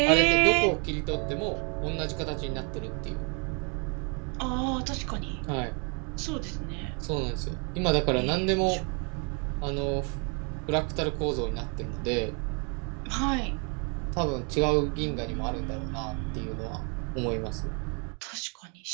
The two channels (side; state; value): left; quieter; 35.6 dB